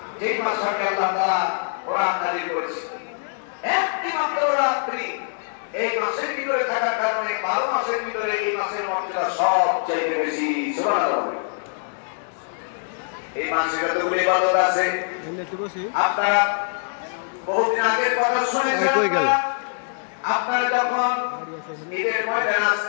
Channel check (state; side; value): silent; right; digital silence